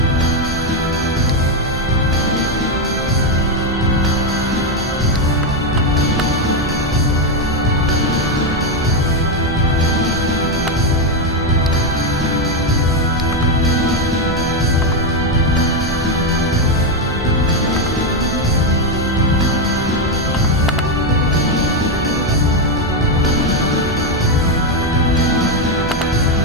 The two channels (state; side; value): normal; both; correlation 0.05